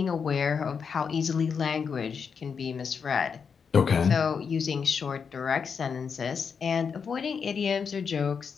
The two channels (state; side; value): quieter; right; 6.2 dB